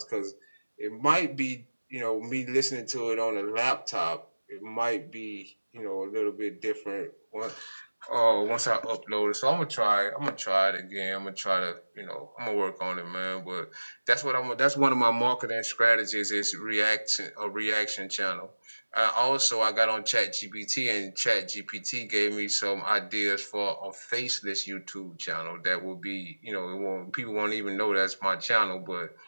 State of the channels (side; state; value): both; inverted; correlation -1.00